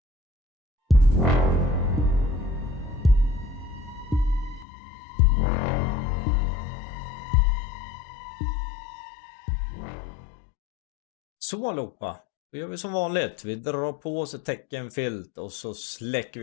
Så allihopa, då gör vi som vanligt. Vi drar på oss ett teckenfilt och så släcker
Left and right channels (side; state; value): right; drops out; at 4.7 s